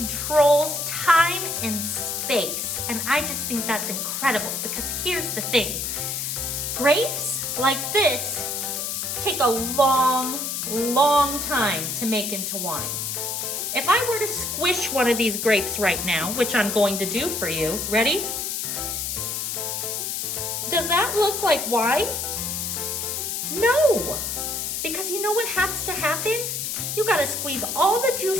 time and space. And I just think that's incredible because here's the thing. Grapes like this take a long time to make into wine. If I were to squish one of these grapes right now, which I'm going to do for you, ready? Does that look like wine? No, because you know what has to happen? You gotta squeeze all the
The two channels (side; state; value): left; noise; hiss, 2 dB below the sound